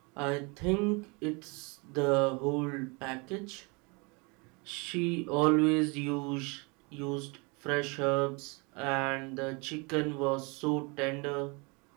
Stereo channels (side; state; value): left; quieter; 29.6 dB